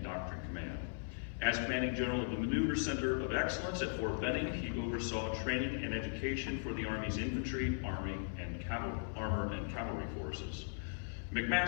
Doctrine Command. As Commanding General of the Maneuver Center of Excellence at Fort Benning, he oversaw training and education for the Army's infantry, armor, and cavalry forces.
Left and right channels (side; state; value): right; silent; 52 dB below the other